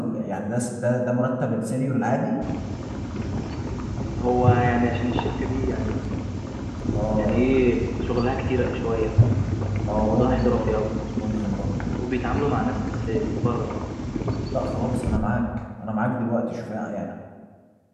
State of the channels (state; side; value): identical; both; correlation 1.00